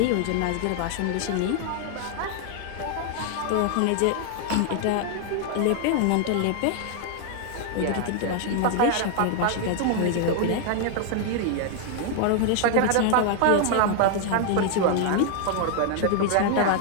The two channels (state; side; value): different; both; correlation 0.00